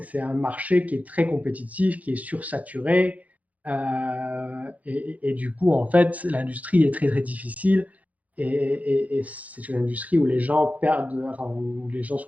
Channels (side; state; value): left; late; 0.073 ms